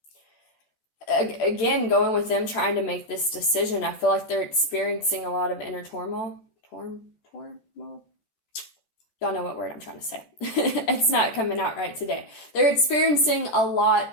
again, going with them trying to make this decision. I feel like they're experiencing a lot of inner turmoil. Turmoil? Y'all know what word I'm trying to say. It's not coming out right today. They're experiencing a lot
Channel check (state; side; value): late; right; 13 ms